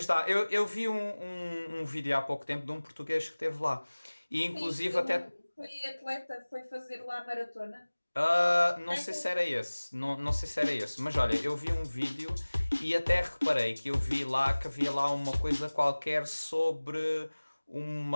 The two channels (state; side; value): inverted; both; correlation -1.00